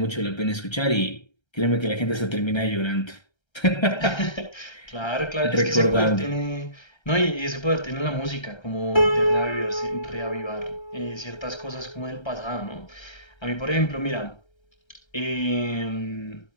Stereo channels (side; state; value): right; late; 1.3 ms